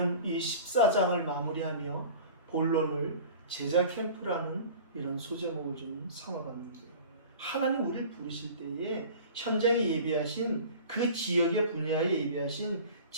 이 14장을 마무리하며 본론을 제자 캠프라는 이런 소제목을 좀 삼아봤는데요. 하나님 우리를 부르실 때에 현장에 예비하신 그 지역의 분야에 예비하신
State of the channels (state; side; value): inverted; both; correlation -0.41